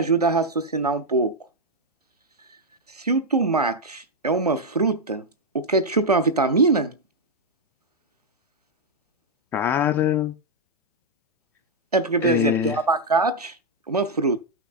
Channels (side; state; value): both; normal; correlation 0.00